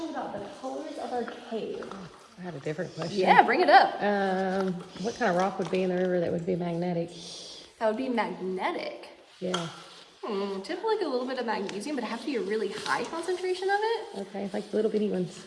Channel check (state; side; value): identical; both; correlation 1.00